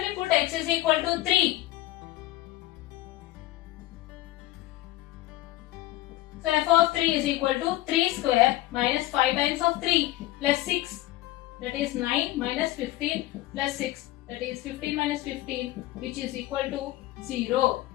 put x is equal to 3. So f of 3 is equal to 3 square minus 5 times of 3 plus 6, that is 9 minus 15 plus 6, that is 15 minus 15, which is equal to 0.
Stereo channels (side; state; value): right; quieter; 16.7 dB